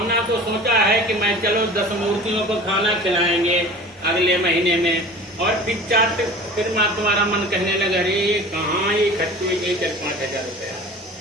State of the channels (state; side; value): normal; both; correlation 0.40